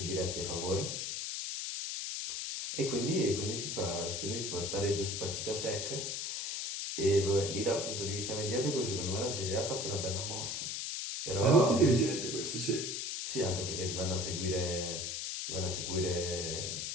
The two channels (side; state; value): left; noise; hiss, 3 dB below the sound